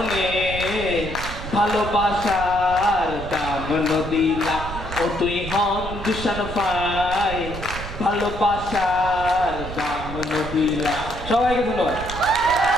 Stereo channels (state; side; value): noise; right; rumble, 10 dB below the sound